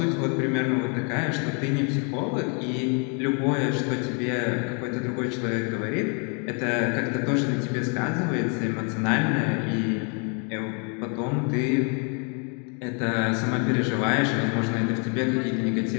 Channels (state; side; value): quieter; right; 37.8 dB